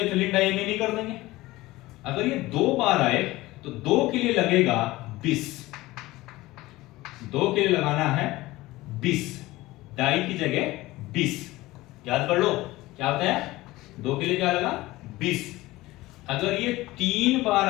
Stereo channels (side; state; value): right; quieter; 18.8 dB